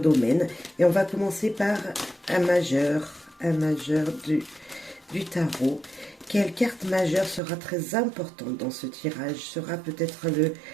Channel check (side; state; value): left; drops out; at 7.4 s